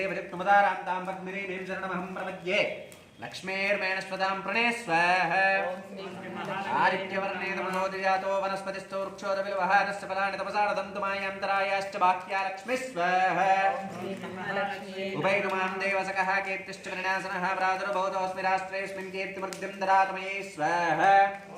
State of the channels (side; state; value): both; identical; correlation 1.00